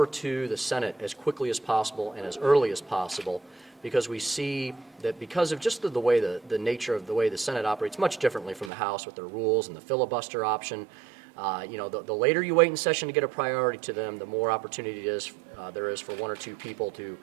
to the Senate as quickly as possible and as early as possible, because we see that because of just the way the nature of the way the Senate operates much differently from the House with their rules and the filibuster option. The later you wait in session to get a priority to them, the more opportunity there is for one or two people to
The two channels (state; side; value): drops out; left; at 8.7 s